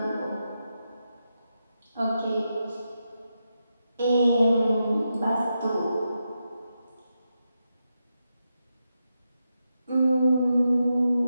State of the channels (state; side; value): inverted; both; correlation -0.87